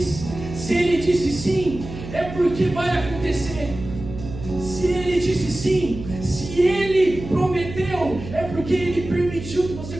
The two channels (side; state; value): right; noise; hum, 11 dB below the sound